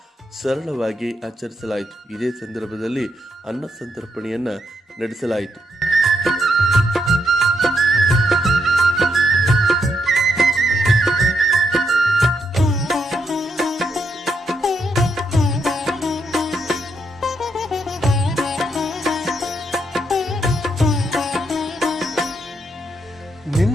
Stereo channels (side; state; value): both; normal; correlation 0.78